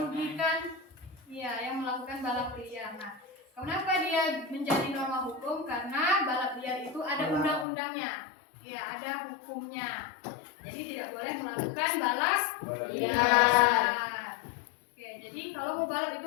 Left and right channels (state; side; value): drops out; right; at 7.7 s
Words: yang melakukan balap liar. Nah, kenapa dia menjadi norma hukum? Karena balap liar itu ada undang-undangnya. Ya, ada hukumnya. Jadi tidak boleh melakukan balap liar. Oke, jadi kalau mau balap itu